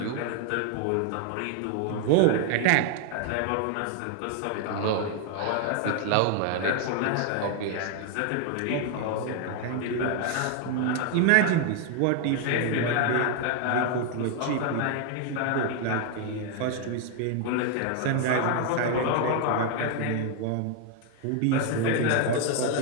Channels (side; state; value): both; different; correlation 0.00